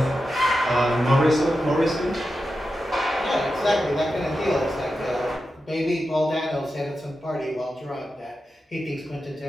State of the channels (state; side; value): normal; both; correlation 0.90